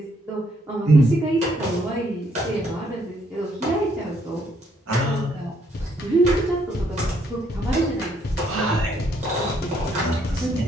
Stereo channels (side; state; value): both; normal; correlation 0.70